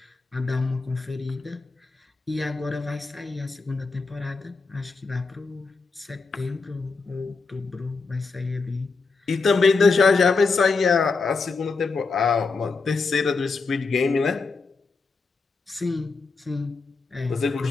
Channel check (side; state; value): right; quieter; 4.3 dB